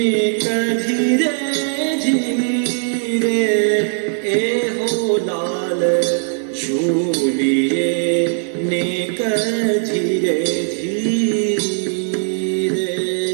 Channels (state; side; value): silent; left; 57 dB below the other